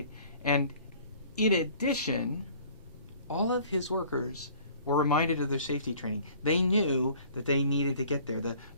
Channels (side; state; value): both; inverted; correlation -0.52